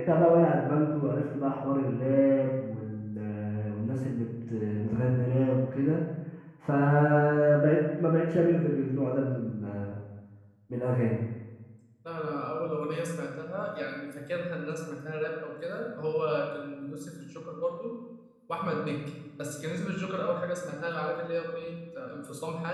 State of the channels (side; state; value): both; identical; correlation 1.00